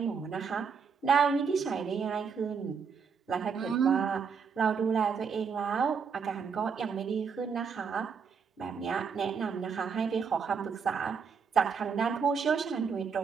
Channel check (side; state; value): left; quieter; 6.1 dB